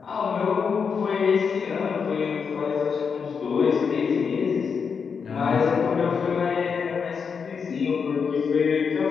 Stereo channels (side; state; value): right; quieter; 6.0 dB